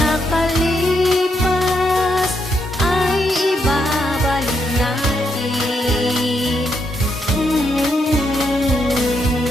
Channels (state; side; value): normal; both; correlation 0.78